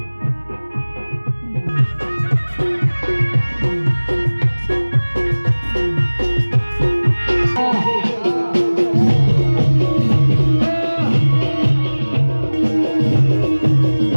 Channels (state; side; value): inverted; both; correlation -1.00